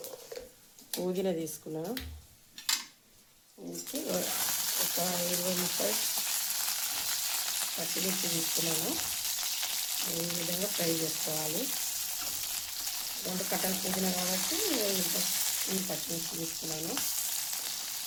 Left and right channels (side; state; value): both; identical; correlation 1.00